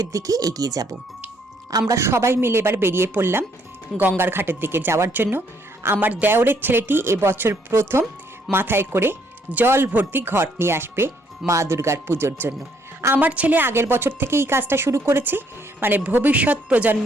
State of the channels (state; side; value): normal; both; correlation 0.69